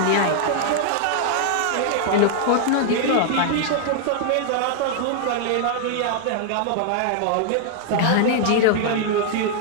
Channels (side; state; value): both; different; correlation -0.01